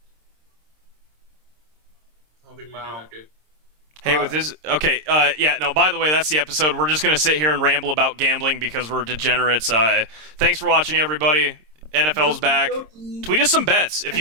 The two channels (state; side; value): late; left; 26 ms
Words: think we Wow. do that good. Hey, with this, okay, yeah, no, by the way, that's the episode. We're just going to sit here and ramble about gambling because we're degenerates. Thanks for watching, everybody. NFL's back. Tweet us some bets. If